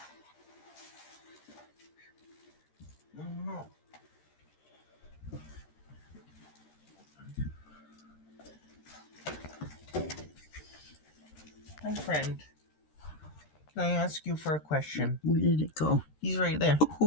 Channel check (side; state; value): right; late; 13 ms